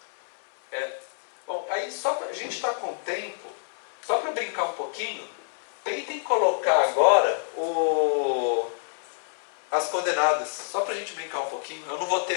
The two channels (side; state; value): right; silent; 60 dB below the other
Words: Bom, aí a gente está com tempo, só para brincar um pouquinho, tentem colocar agora as coordenadas, só para a gente brincar um pouquinho. Eu não vou ter